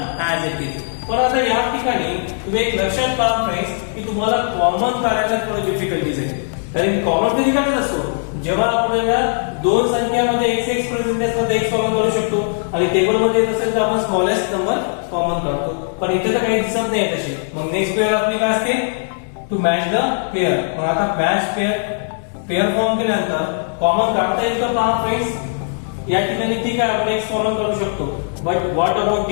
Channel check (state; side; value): silent; right; digital silence